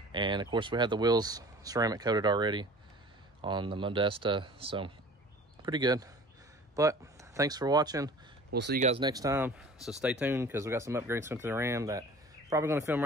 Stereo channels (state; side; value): normal; both; correlation 0.44